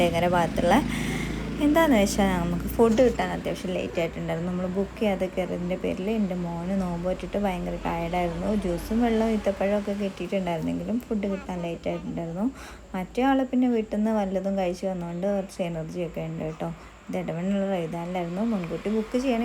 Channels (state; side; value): identical; both; correlation 1.00